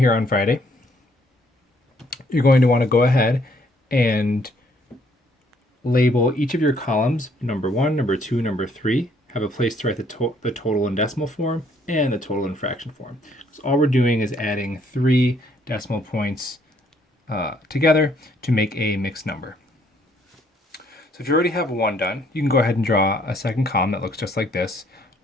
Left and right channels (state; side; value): normal; both; correlation 0.66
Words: on Friday, you're going to want to go ahead and label each of your columns number 1, number 2, number 3. Have a place to write the total in decimal form and the total in fraction form. So all we're doing is adding 3 decimal points together to make a mixed number. So if you already have one done, you can go ahead and draw a second column that looks just like this